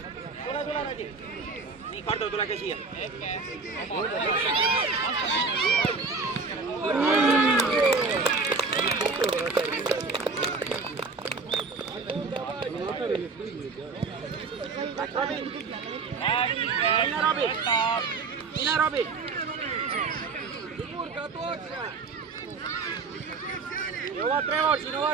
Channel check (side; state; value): left; quieter; 4.3 dB